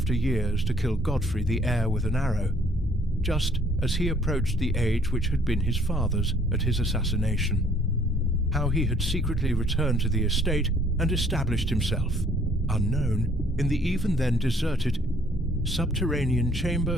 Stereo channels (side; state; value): both; normal; correlation 0.61